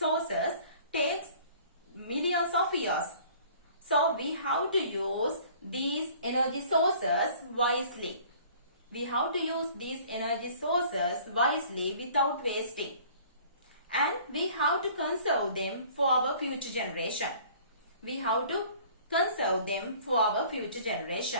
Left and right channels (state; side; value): inverted; both; correlation -0.51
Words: takes millions of years. So we have to use these energy sources wisely. We have to use these energy sources wisely without wasting. And we have to conserve them for our future generation. We have to conserve them for our future